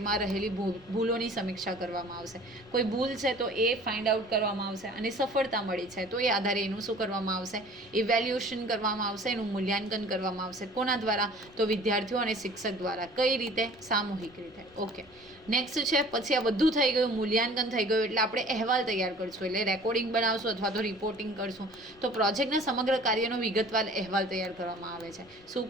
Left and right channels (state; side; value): noise; right; rumble, 29 dB below the sound